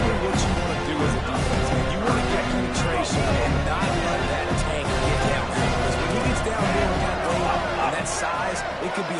what you want to do as a defense, man. You want to get penetration and not let that tank get downfield. Because when he gets downfield in that weight and that size, it could be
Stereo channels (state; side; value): identical; both; correlation 1.00